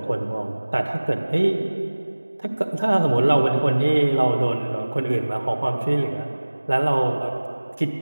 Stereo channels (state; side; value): inverted; both; correlation -1.00